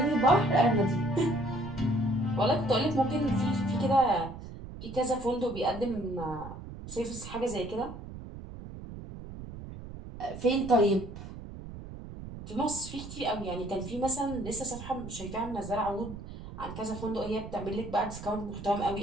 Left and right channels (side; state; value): right; noise; rumble, 12 dB below the sound